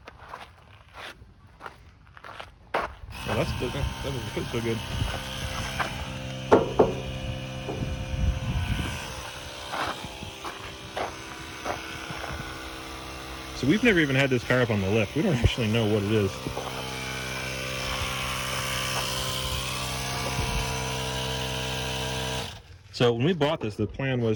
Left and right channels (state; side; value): identical; both; correlation 1.00